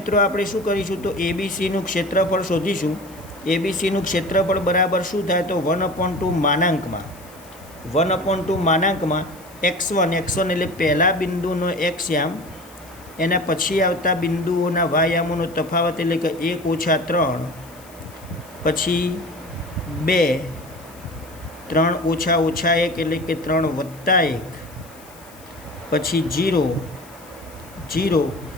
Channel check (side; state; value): left; noise; hiss, 23 dB below the sound